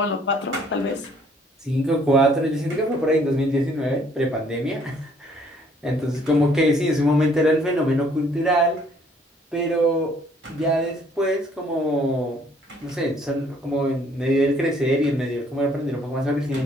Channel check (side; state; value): both; normal; correlation 0.62